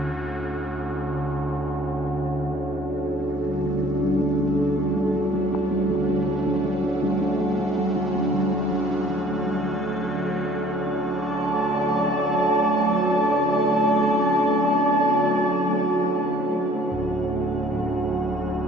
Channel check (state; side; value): normal; both; correlation 0.56